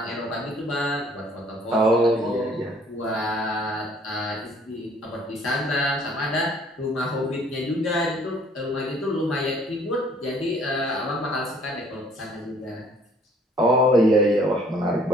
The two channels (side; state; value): both; normal; correlation 0.58